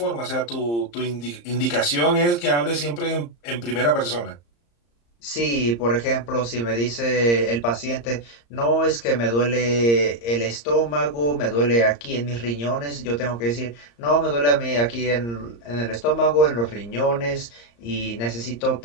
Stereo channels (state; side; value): late; right; 34 ms